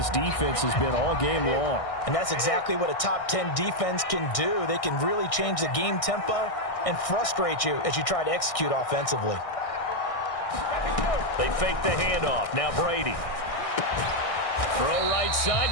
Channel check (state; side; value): late; right; 1.6 ms